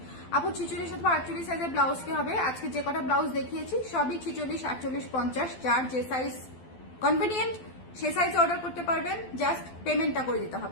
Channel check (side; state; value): right; late; 12 ms